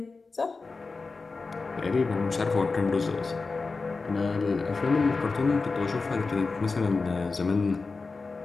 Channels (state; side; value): quieter; right; 4.1 dB